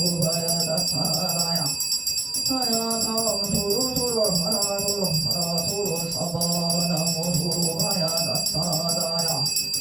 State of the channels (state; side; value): quieter; left; 3.1 dB